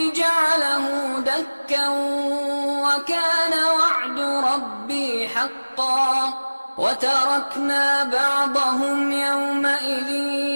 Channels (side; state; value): both; inverted; correlation -1.00